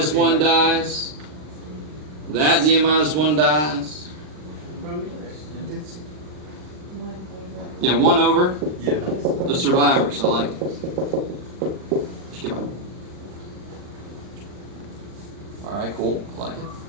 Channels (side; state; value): left; late; 40 ms